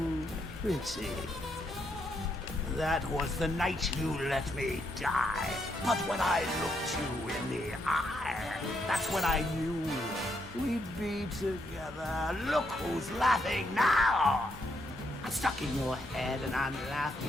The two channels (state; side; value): normal; both; correlation 0.77